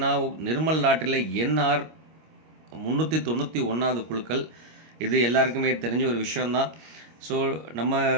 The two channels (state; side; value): late; left; 25 ms